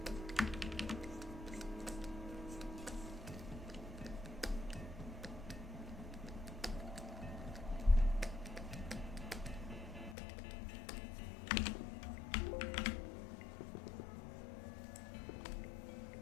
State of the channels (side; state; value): right; drops out; at 10.2 s